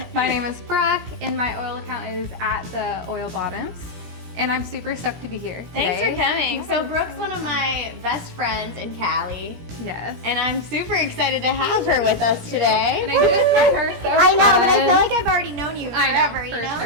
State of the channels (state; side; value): late; left; 17 ms